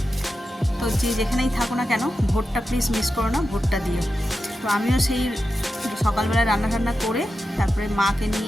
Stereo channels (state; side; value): normal; both; correlation 0.91